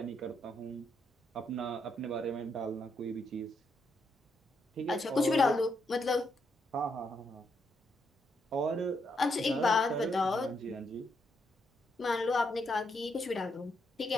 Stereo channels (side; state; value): both; normal; correlation 0.78